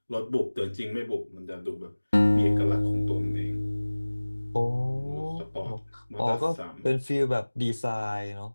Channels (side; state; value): both; inverted; correlation -1.00